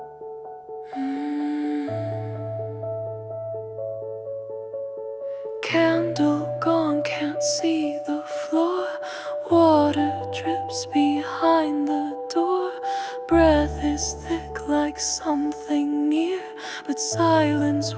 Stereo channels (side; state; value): both; identical; correlation 1.00